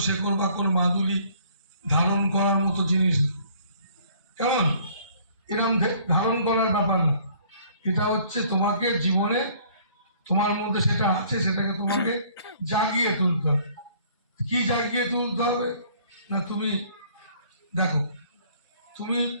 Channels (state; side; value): inverted; both; correlation -0.58